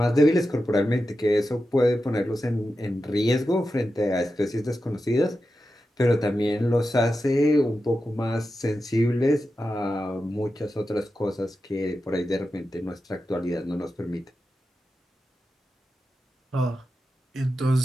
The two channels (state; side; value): normal; both; correlation 0.91